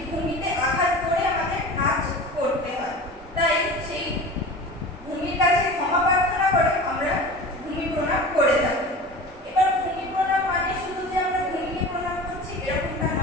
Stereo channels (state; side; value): normal; both; correlation 0.35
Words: ভূমিতে আঘাত করে আমাদের নাচ করতে হয়। তাই সেই ভূমির কাছে ক্ষমা প্রার্থনা করে আমরা ভূমি প্রণাম করে থাকি। এবার ভূমি প্রণাম মানে শুধু যে আমরা ভূমিকে প্রণাম করছি এরকমটা